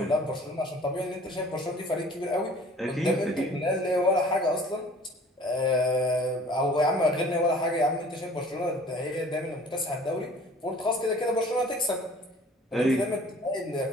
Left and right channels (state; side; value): normal; both; correlation 0.49